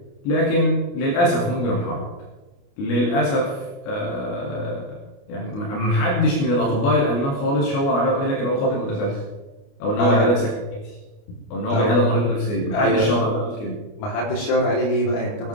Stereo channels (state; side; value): late; right; 29 ms